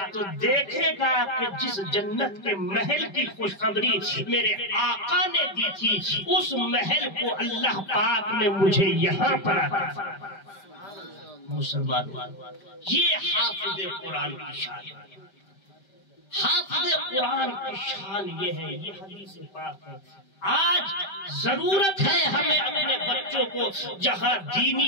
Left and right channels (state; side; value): late; right; 5.1 ms